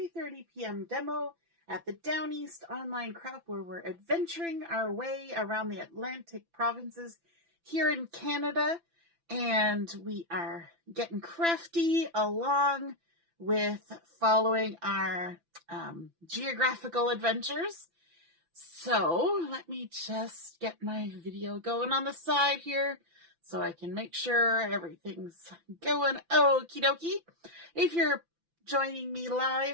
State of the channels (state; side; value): late; left; 5.9 ms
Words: p.m. demo at the Down East Online Crop, where we're adventuring our way around the Atlantic provinces here in Canada, and we are getting crafty along with following our geographical adventures. So let me just get my video going on the side here so I can make sure everything's going okie dokie. If you're joining me